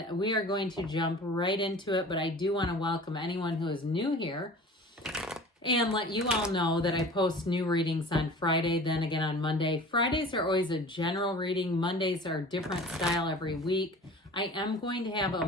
we are going to jump right into it, but I do want to welcome anyone who is new here and let you all know that I post new readings on Friday, then again on Monday. Fridays are always a general reading. Mondays are a different style every week. I am going to have a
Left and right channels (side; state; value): both; normal; correlation 0.41